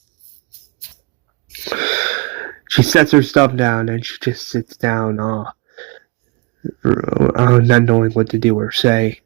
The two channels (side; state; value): left; quieter; 25.1 dB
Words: She sets her stuff down and she just sits down, not knowing what to do or say.